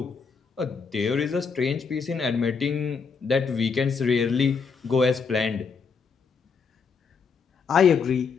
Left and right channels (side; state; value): right; quieter; 5.5 dB